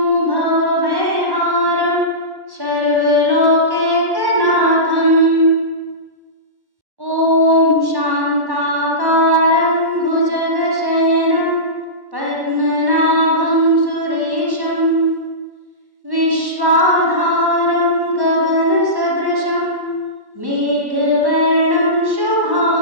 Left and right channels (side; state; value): left; late; 1.1 ms